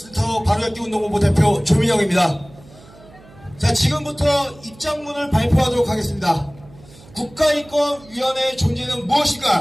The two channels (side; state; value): right; noise; hum, 23 dB below the sound